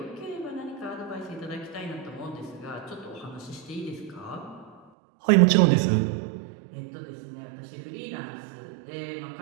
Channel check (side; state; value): left; drops out; at 4.8 s